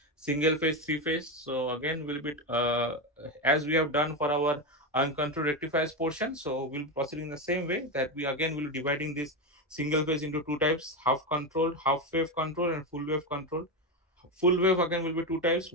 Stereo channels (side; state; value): both; normal; correlation 0.13